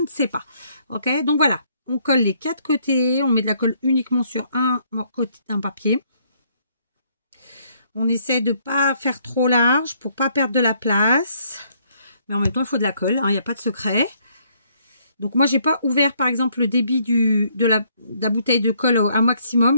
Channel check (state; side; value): inverted; both; correlation -0.67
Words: ne sais pas. Ok, donc voilà. On colle les 4 côtés. On met de la colle uniquement sur un côté d'un papier. On essaie de ne pas faire trop large pour pas perdre de la place. Mais en même temps, il faut de la colle. Il n'y a pas de secret. Donc moi, j'ai pas ouvert par exemple le débit de la bouteille de colle à